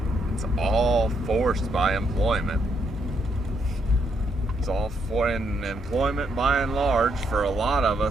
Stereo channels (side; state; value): both; normal; correlation 0.76